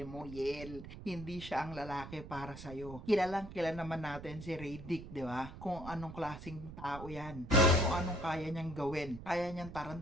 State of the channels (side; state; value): right; noise; rumble, 12 dB below the sound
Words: mo, Yel. Hindi siya ang lalaki para sa'yo. Kilalang kilala naman natin si Radic, di ba? Kung anong klaseng tao yan. Kung anong kaya niyang gawin. Kaya niyang